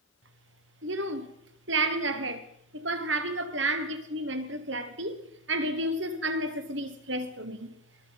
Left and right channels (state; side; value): normal; both; correlation 0.05